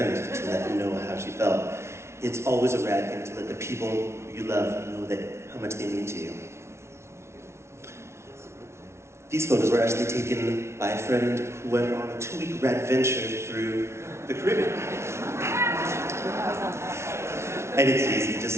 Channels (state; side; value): late; left; 0.13 ms